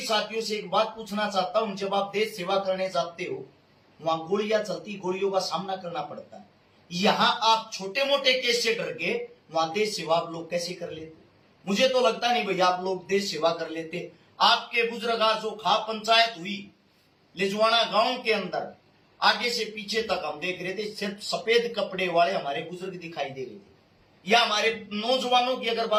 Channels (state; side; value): identical; both; correlation 1.00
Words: साथियों से एक बात पूछना चाहता हूं, जब आप देश सेवा करने जाते हो, वहां गोलियां चलती, गोलियों का सामना करना पड़ता है। यहां आप छोटे मोटे केस से डर के वहां देश सेवा आप लोग कैसे कर लेते? मुझे तो लगता नहीं भैया आप लोग देश सेवा कर लेते। आपके बुजुर्ग, जो खाप पंचायत हुई लिजवाना गांव के अंदर, आगे से पीछे तक हम देख रहे थे, सिर्फ सफेद कपड़े वाले हमारे बुजुर्ग दिखाई दे रहे थे। या हमारे नौजवानों की अगर